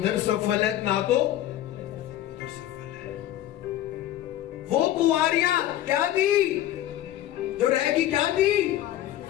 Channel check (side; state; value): right; quieter; 13.0 dB